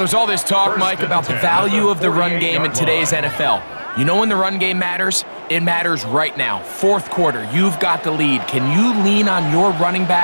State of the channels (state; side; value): inverted; both; correlation -1.00